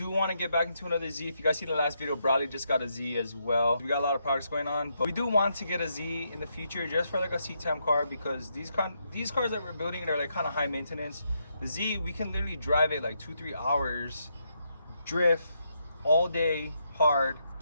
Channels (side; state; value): both; inverted; correlation -0.79